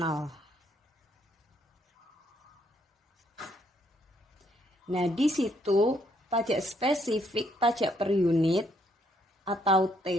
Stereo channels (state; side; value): normal; both; correlation 0.71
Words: Nah, di situ pajak spesifik, pajak per unit atau T,